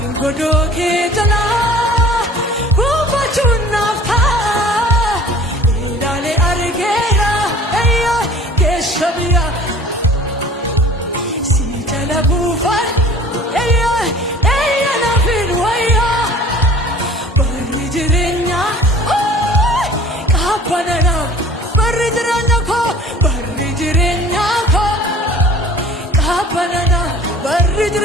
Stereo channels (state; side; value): normal; both; correlation 0.47